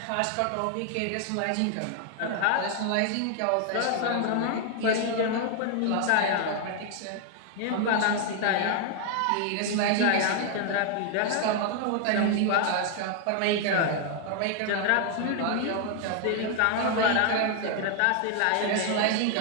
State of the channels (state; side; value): different; both; correlation 0.00